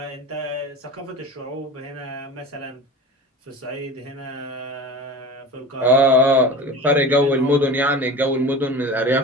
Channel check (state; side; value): normal; both; correlation 0.34